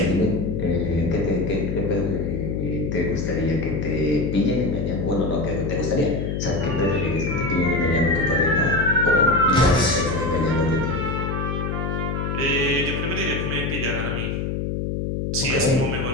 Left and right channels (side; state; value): left; noise; hum, 2 dB below the sound